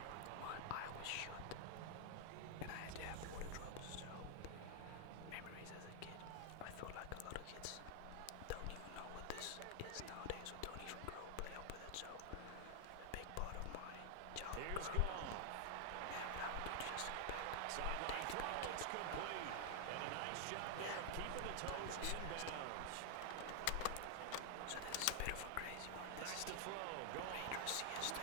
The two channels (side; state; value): both; different; correlation 0.00